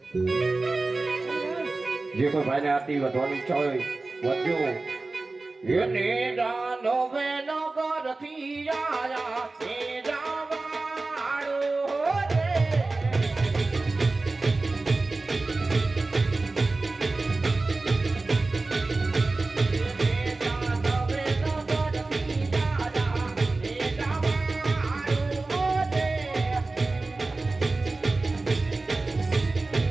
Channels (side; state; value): left; quieter; 3.4 dB